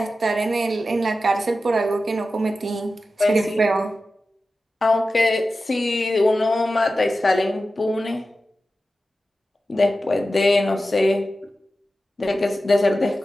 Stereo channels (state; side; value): normal; both; correlation 0.93